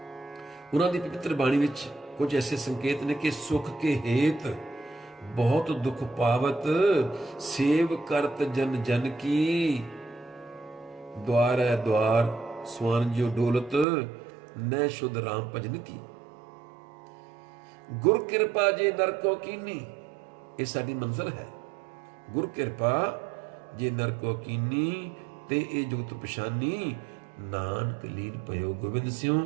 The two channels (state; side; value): drops out; left; at 13.9 s